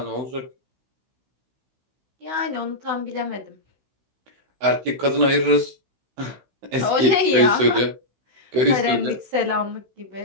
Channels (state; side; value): late; left; 16 ms